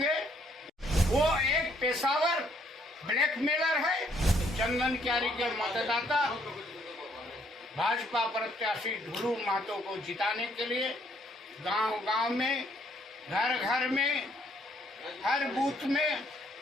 वो एक पेशावर ब्लैकमेलर है। चंदन क्यारी के मतदाता भाजपा प्रत्याशी ढुल्लू महतो को जिताने के लिए गांव-गांव में, घर-घर में, हर बूथ में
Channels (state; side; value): normal; both; correlation 0.68